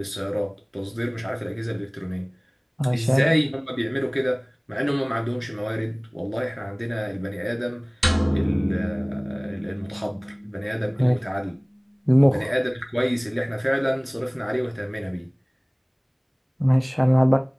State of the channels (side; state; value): both; identical; correlation 1.00